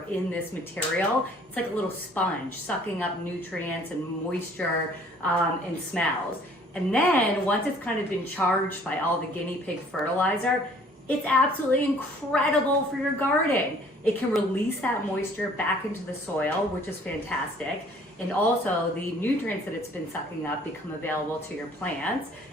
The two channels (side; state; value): both; normal; correlation 0.56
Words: in this material. It's like a little sponge sucking up nutrients and moisture and smells. And then once it's kind of been charged by all the guinea pig fertilizer, it's absolutely incredible for your garden. It can release that moisture back into the soil, which is fantastic. And also the nutrients that it's been sucking up become available to your plants.